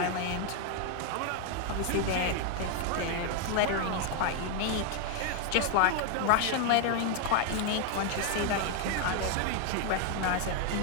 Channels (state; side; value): different; both; correlation 0.01